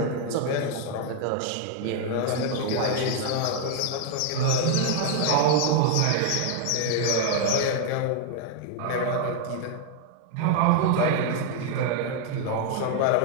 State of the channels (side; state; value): both; different; correlation 0.00